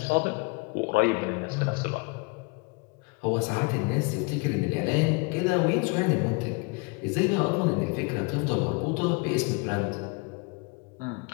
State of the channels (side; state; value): right; quieter; 29.2 dB